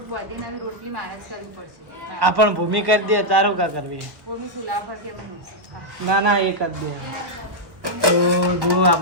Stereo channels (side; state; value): left; late; 1.4 ms